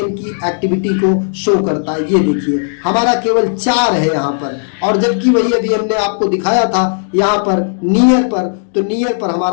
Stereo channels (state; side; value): silent; right; digital silence